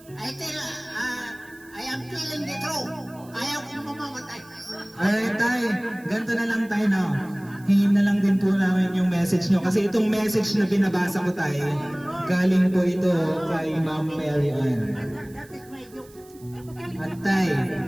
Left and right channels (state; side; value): noise; right; hiss, 25 dB below the sound